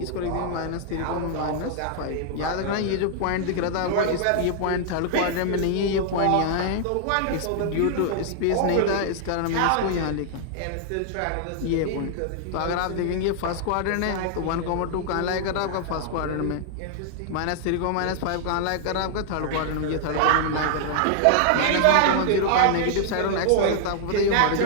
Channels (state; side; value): different; both; correlation -0.01